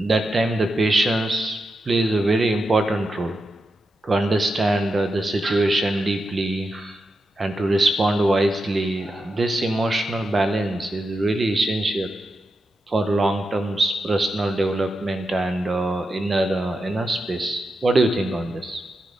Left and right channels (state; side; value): normal; both; correlation 0.88